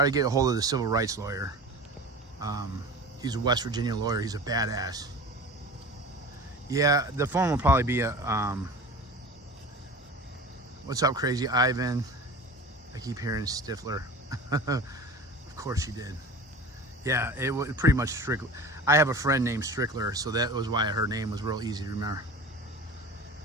to get a hold of the civil rights lawyer. He's a West Virginia lawyer. He's a badass. Yeah, the phone will probably be a. What's up, Crazy Ivan? I keep hearing Stifler. Of course you did. Yeah, it was pretty much Strickler. I have a friend named Strickler, so that was why her name was real easy to remember.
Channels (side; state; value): both; normal; correlation 0.36